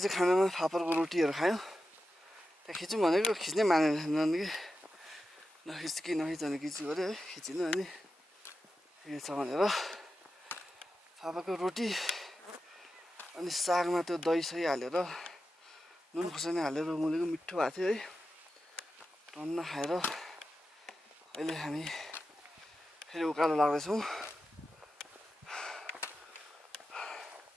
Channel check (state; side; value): normal; both; correlation 0.91